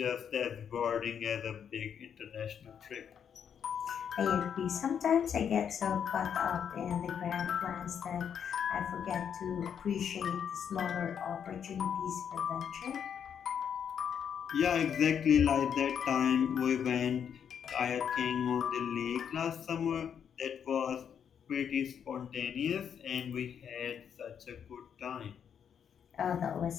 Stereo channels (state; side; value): quieter; right; 8.0 dB